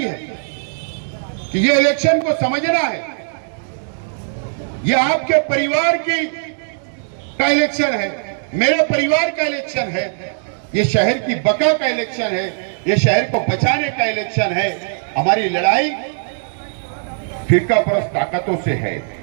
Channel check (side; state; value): left; silent; digital silence